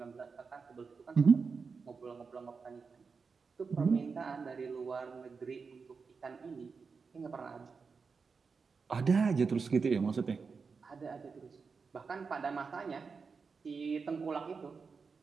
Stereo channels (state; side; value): quieter; left; 5.1 dB